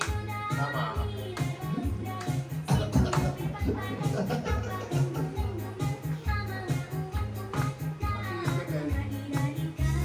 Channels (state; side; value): identical; both; correlation 1.00